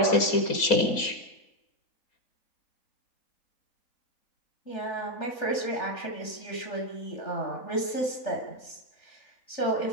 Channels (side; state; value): right; late; 3.4 ms